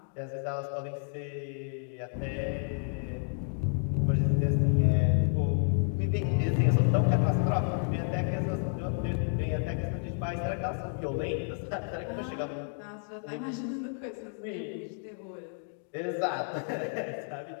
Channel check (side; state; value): right; silent; 57 dB below the other